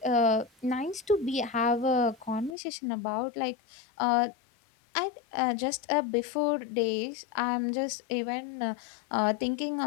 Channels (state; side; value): drops out; right; at 2.6 s